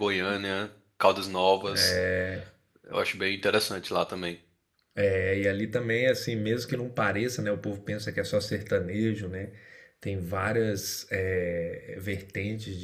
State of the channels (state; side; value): identical; both; correlation 1.00